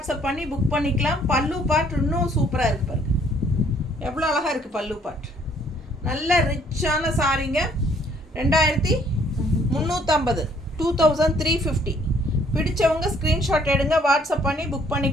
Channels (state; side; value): normal; both; correlation 0.63